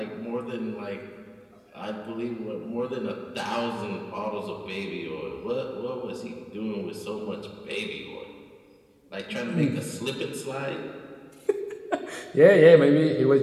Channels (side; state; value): both; identical; correlation 1.00